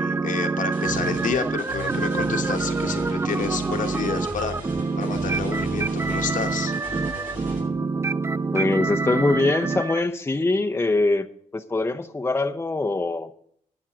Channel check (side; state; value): both; normal; correlation 0.70